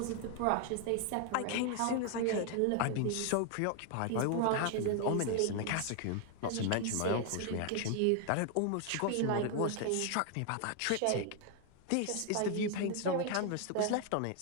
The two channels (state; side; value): different; both; correlation 0.00